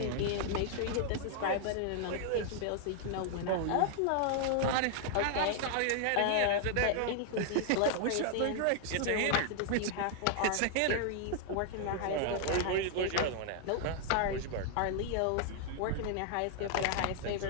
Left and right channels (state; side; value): different; both; correlation 0.00